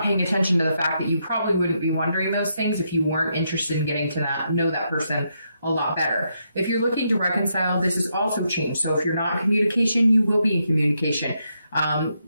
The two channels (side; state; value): both; inverted; correlation -0.80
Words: paying attention to the fact that you probably wouldn't be wondering those things if you weren't interested in getting to know that person a lot better. If you're looking to reconcile, this has also changed. So if you're not in communication, you will be in communication.